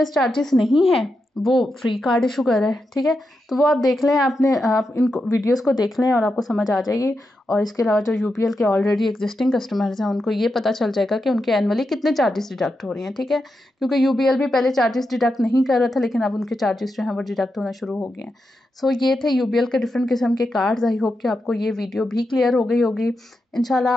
चार्जेस नहीं है वो फ्री कार्ड इशू कर रहा है। ठीक है, तो वो आप देख लें, आप इन वीडियोस को देख लें और आपको समझ आ जाएगी। और इसके अलावा जो यूपीएल के ऑलरेडी एग्जिस्टिंग कस्टमर्स हैं उनको ये पता चल जाएगा कि उनके एनुअली कितने चार्जेस डिडक्ट हो रही हैं। ठीक है, क्योंकि यूपीएल भी पहले चार्जेस डिडक्ट नहीं कर रहा था, लेकिन अब उनके चार्जेस जो हैं वो डिडक्ट होना शुरू हो गए हैं। सो ये थे यूपीएल के डिफरेंट किस्म के कार्ड्स। आई होप कि आपको ये वीडियो भी क्लियर हो गई होगी। इंशाल्लाह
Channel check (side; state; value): both; normal; correlation 0.87